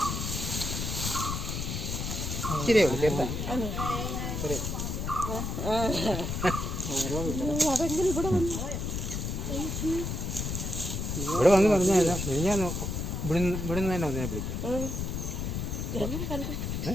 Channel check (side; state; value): left; noise; rumble, 3 dB below the sound